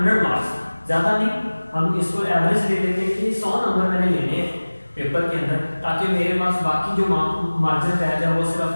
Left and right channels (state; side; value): inverted; both; correlation -1.00